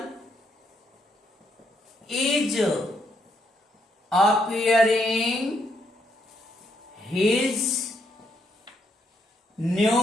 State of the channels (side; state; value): both; normal; correlation 0.75